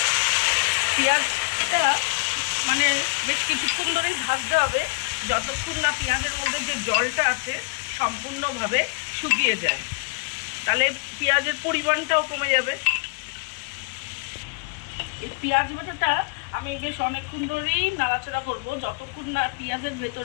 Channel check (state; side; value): quieter; right; 33.6 dB